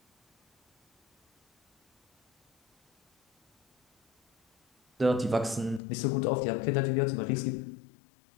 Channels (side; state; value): right; drops out; at 5.8 s